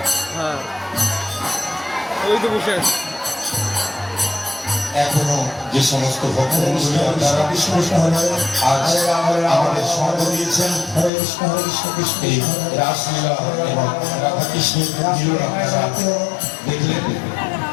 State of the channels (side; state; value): right; drops out; at 11.1 s